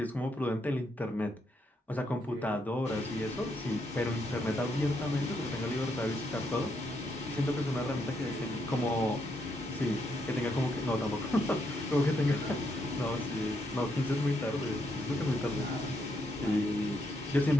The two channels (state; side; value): normal; both; correlation 0.77